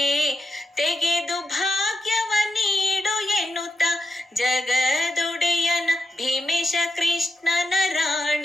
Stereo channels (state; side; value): normal; both; correlation 0.86